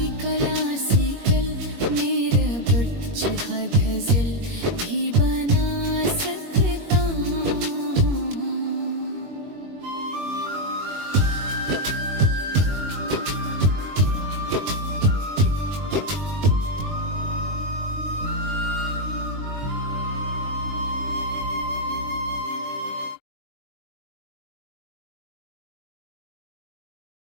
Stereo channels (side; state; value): left; late; 21 ms